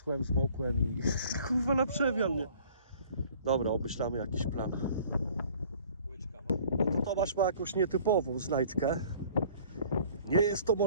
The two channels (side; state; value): both; inverted; correlation -0.53